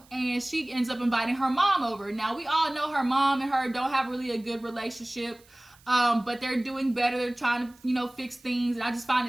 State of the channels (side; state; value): right; noise; hiss, 28 dB below the sound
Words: and she ends up inviting her mom over. Now, we all know her mom and her don't have really a good relationship, but they're doing better. They're trying to, you know, fix things. And I just find